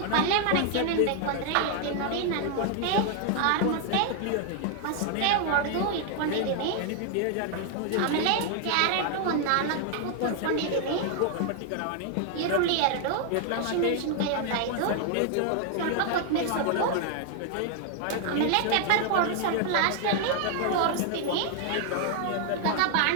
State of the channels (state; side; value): different; both; correlation 0.00